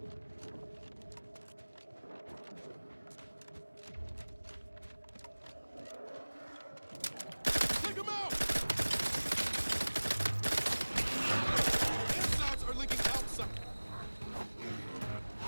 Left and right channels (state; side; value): inverted; both; correlation -1.00